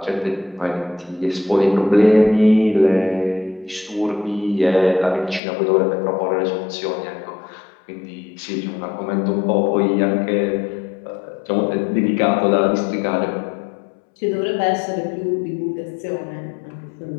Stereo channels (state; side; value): drops out; right; at 5.4 s